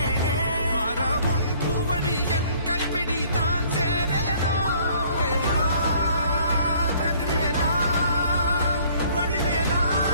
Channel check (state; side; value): inverted; both; correlation -0.58